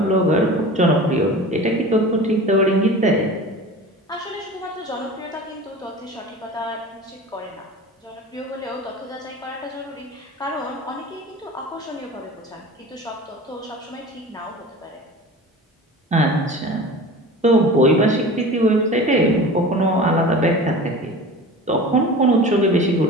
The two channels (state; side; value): normal; both; correlation 0.36